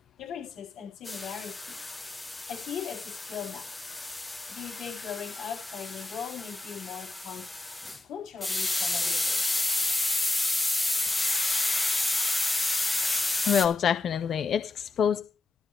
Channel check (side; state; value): right; quieter; 3.5 dB